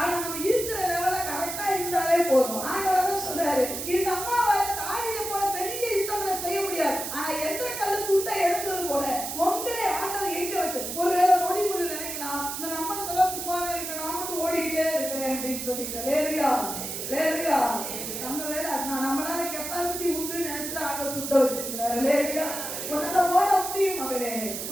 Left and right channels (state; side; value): noise; right; hiss, 5 dB below the sound